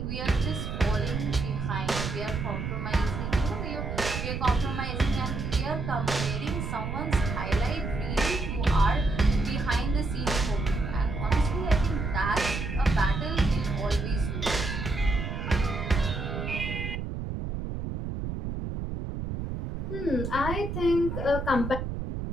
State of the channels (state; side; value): noise; right; rumble, 4 dB below the sound